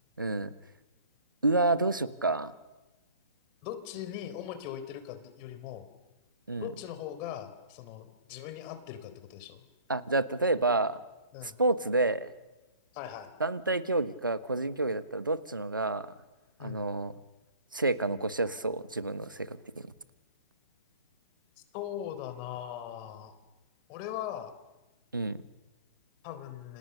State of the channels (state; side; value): inverted; both; correlation -0.48